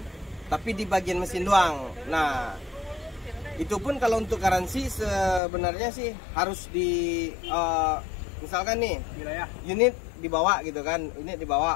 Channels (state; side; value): drops out; right; at 5.4 s